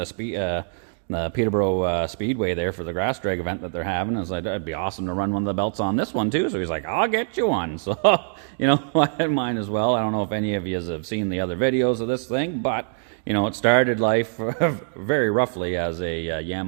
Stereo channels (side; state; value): left; silent; digital silence